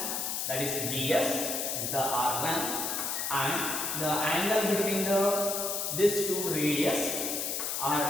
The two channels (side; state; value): left; noise; hiss, 1 dB below the sound